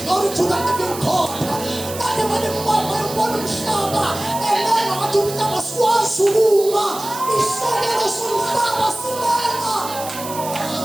glory to the living God ade malimbona umhlaba elena wathi umhlaba swazi ukuma isakelo somhlaba silena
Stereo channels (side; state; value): right; noise; hiss, 11 dB below the sound